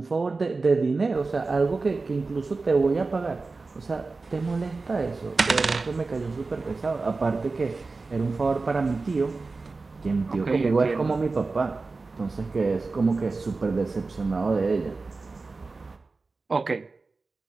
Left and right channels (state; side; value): quieter; left; 3.9 dB